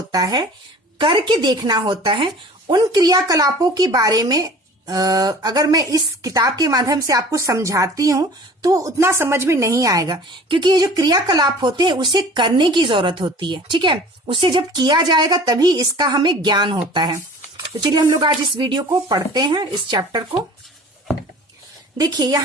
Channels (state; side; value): normal; both; correlation 0.44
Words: है, करके देखना होता है, उन क्रियाकलापों के बारे में अगर मैं इस किताब के माध्यम से आपको समझाती हूं तो उतना समझ में नहीं आएगा, क्योंकि ये जो क्रियाकलाप होते हैं उसे करने की जरूरत होती है। ठीक है, उसे जब किया जाएगा तभी इसका हमें ज्ञान होता है। तो चलिए हम लोग आज इस वीडियो को पढ़ते हैं, इस चैप्टर को। देखिए